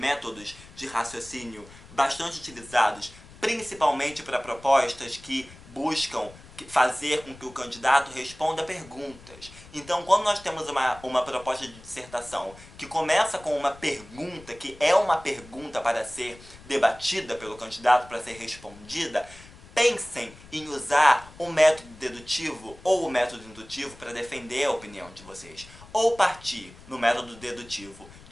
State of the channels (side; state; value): left; noise; rumble, 20 dB below the sound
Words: de raciocínio bastante utilizados, principalmente para propostas que buscam fazer com que o candidato responda perguntas. Então, quando nós temos uma proposta de dissertação que começa com uma pergunta, que é uma pergunta para ser debatida pelo candidato, para ser respondida, pensem em usar o método dedutivo ou o método indutivo para defender a opinião de vocês. Ou partir no método dedutivo